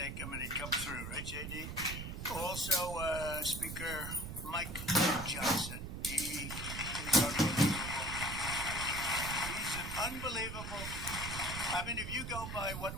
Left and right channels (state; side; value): noise; right; rumble, 7 dB below the sound